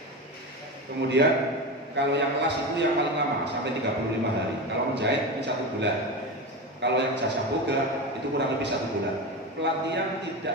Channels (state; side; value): normal; both; correlation 0.22